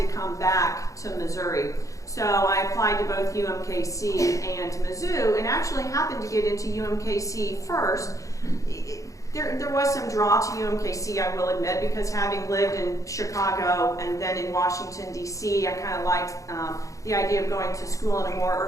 come back to Missouri. So I applied to both UMKC and Mizzou, and actually happened to get into UMKC first. There was some draw to UMKC, I will admit, because having lived in Chicago and then in Washington, D.C., I kind of liked the idea of going to school in a more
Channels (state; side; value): late; right; 0.16 ms